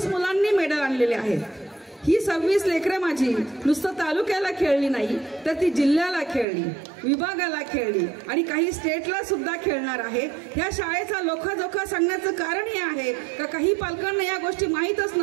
मुलांनी मेडल आणलेले आहेत। ही 26 लेकरं माझी नुसतं तालुक्याला खेळली नाही तर ती जिल्ह्याला खेळली, विभागाला खेळली आणि काही स्टेटला सुद्धा खेळणार आहे। ह्या शाळेचा लोखाजोखा सांगण्याचं कारण हे आहे का काही पालकांना या गोष्टी माहीतच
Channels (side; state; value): left; drops out; at 6.5 s